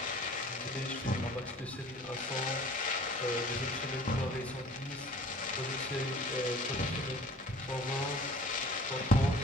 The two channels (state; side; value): normal; both; correlation 0.47